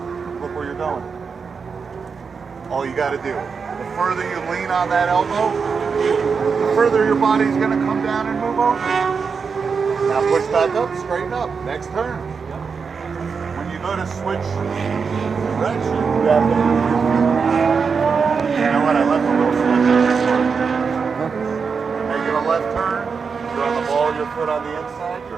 Look where you're going. All you got to do. The further you lean on that elbow, the further your body's going to come down and move over. Now push back up, straighten up. Next turn. When you go to switch direction, you have to move your feet. You know what? I left a little slip in this part. You're making a left turn. You're on the ball, your foot on the inside.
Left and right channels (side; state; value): left; quieter; 5.5 dB